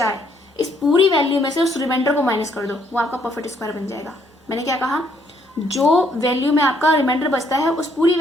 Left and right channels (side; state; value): both; normal; correlation 0.69